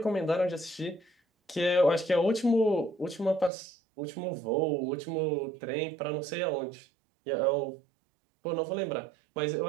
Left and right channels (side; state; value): left; drops out; at 3.5 s